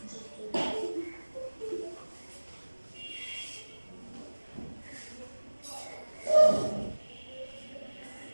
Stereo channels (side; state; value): both; inverted; correlation -1.00